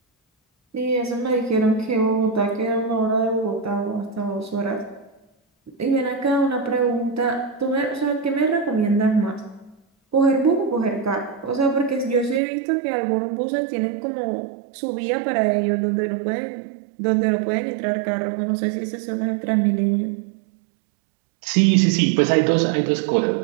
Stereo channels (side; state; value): left; drops out; at 12.4 s